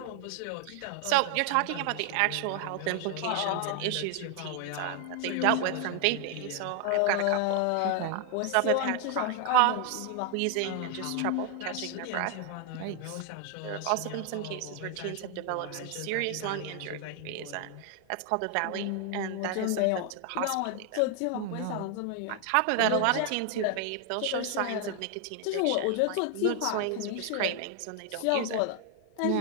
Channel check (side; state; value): both; different; correlation 0.00